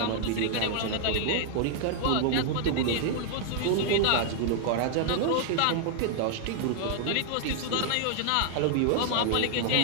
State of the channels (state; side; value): different; both; correlation -0.01